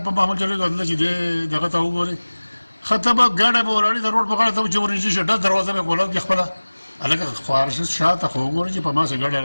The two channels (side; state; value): both; inverted; correlation -1.00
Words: په معمول چلېږو دلته چې دې دغه ته وګورې ښه ته به ګاډی به ولاړې د روډ په غاړه ته به چې ورنږدې شي ډز دروازه به یې کولاو کړي خپله هلکه خوارش شاته خو وګورې چې په ما سه ګاډی